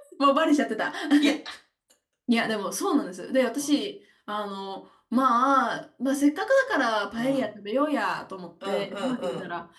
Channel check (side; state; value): both; identical; correlation 1.00